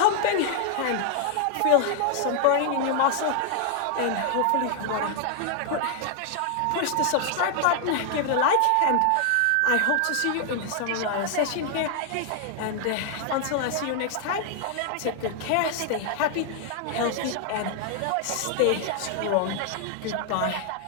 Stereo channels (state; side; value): different; both; correlation 0.00